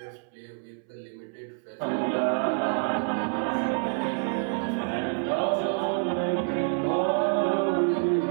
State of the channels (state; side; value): silent; left; 60 dB below the other